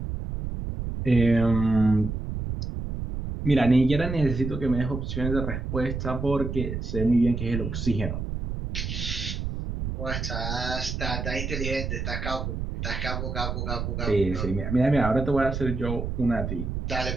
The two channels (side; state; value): right; noise; rumble, 4 dB below the sound